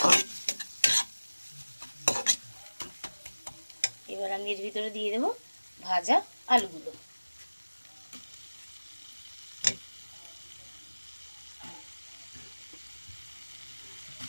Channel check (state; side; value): inverted; both; correlation -1.00